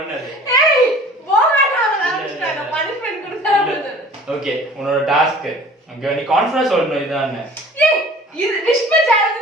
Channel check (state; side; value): normal; both; correlation 0.47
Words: ஏய் போகாதா நான் பனிஷ்மென்ட் கொடுத்தா. ஓகே, உன்னோட டாஸ்க். ஓகே, நீ கான்ஃபிடன்ஸ் சொல்லணும் இதான். ஏய் இது விஸ்பர்